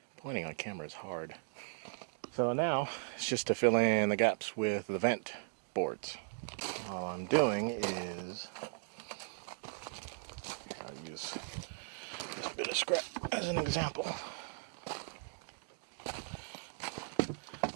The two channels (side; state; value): left; silent; digital silence